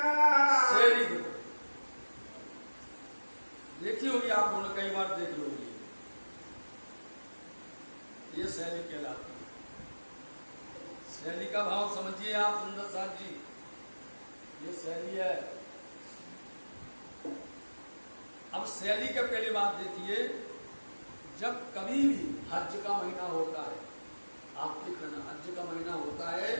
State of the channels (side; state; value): both; inverted; correlation -1.00